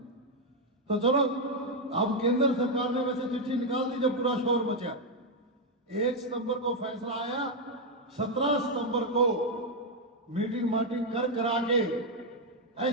तो चलो, अब केंद्र सरकार ने वैसे चिट्ठी निकाल दी, जब पूरा शोर मचा। 1 सितंबर को फैसला आया, 17 सितंबर को मीटिंग मार्टिंग कर करा के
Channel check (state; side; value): normal; both; correlation 0.01